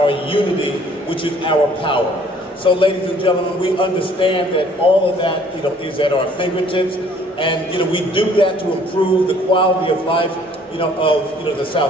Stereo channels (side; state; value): both; normal; correlation 0.58